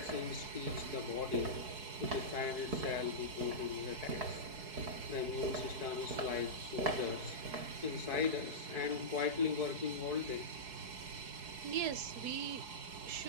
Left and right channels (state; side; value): late; left; 4.7 ms